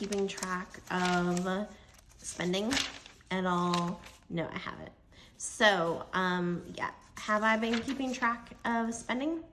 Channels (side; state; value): both; identical; correlation 1.00